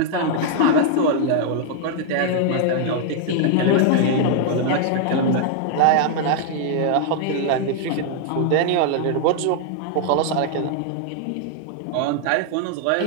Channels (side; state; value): both; different; correlation 0.00